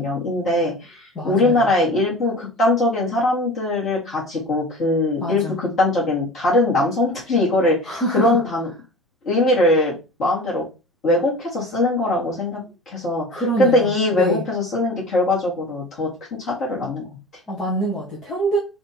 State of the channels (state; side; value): normal; both; correlation 0.36